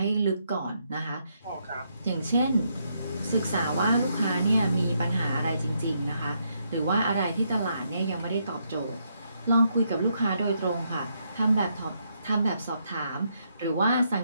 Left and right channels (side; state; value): both; inverted; correlation -0.77